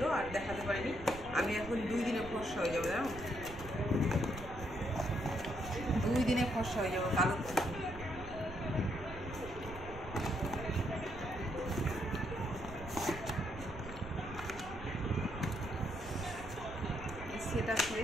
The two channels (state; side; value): noise; right; rumble, 13 dB below the sound